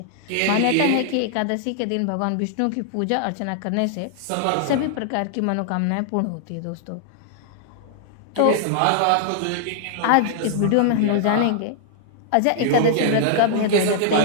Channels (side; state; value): both; different; correlation -0.01